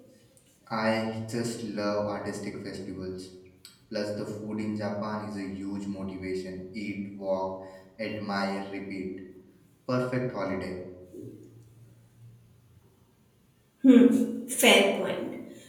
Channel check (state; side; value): identical; both; correlation 1.00